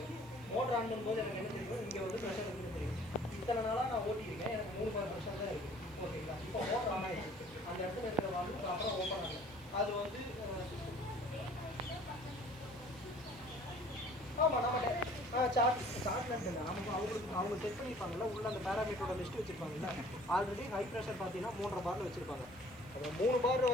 மோட்டர் ஆன் பண்ணும்போது எனக்கு என்ன தெரியும், இங்கே வந்து ப்ரெஷர் வந்து தெரியும். இத்தனை நாளாக நான் ஓட்டியிருக்கேன், எனக்கு 3 பார் ப்ரெஷர் தான் இருக்குது. ஓகேங்களா? இப்போ மோட்டர் ஆன் ஆகிடுச்சு, அந்த இடத்துல இருக்கிற வால்வு ப்ராப்பராக ஓப்பன் ஆகும். அது வந்து ஆமாம் நம்ம சார்ட்மெண்ட் இல்லை. அவங்க செக் பண்ணியிருப்பாங்கல்ல, உள்ள அந்த பேராமீட்டரோட லிஸ்ட் வச்சுருப்பாங்கல்ல. ஆல்ரெடி ஹை ப்ரெஷர் பார்த்தீங்கன்னா 3.5 பாரில் வச்சுருப்பாங்க. 3 பார்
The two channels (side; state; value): right; noise; hiss, 26 dB below the sound